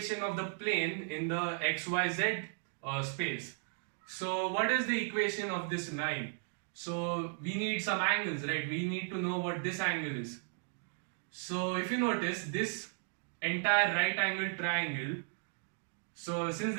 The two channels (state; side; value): silent; left; 54 dB below the other